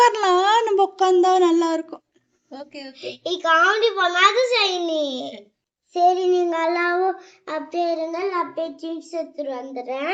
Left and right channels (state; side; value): identical; both; correlation 1.00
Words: நம்ம உட்கார்ந்தா நல்லா இருக்கும். ஓகே. காமெடி பண்ணாத ஷைனி. சரி, நீங்க எல்லாரும் அப்படியே இருங்க, நான் அப்படியே ஜீன்ஸ் எடுத்துட்டு